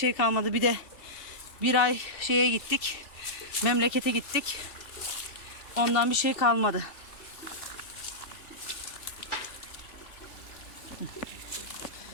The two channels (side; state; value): right; late; 2.7 ms